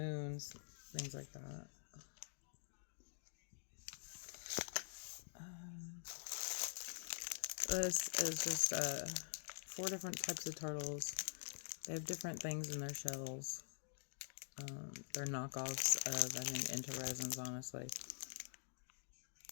things like that. This is just 4 different types of turtles. They have different things in their shells. They're knockoffs of, I think, Into Resins, honestly.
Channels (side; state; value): right; silent; digital silence